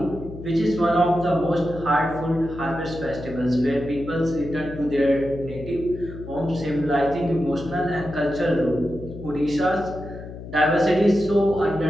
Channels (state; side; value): noise; left; hum, 12 dB below the sound